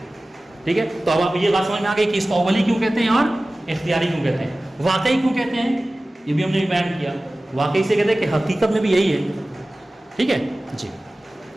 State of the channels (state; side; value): normal; both; correlation 0.97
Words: ٹھیک ہے، تو اب آپ یہ بات سمجھ میں آ گئی کہ اس کو اولی کیوں کہتے ہیں اور اختیاری کیوں کہتے ہیں. واقعی کیوں کہتے ہیں یہ بھی ہم نے بیان کیا. واقعی سے کہتے ہیں کہ حقیقت میں بھی یہی ہے. ٹھیک ہے جی.